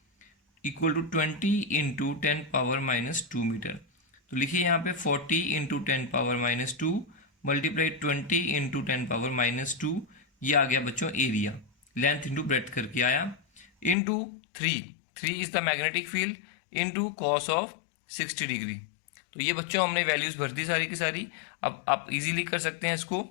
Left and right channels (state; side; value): drops out; right; at 14.0 s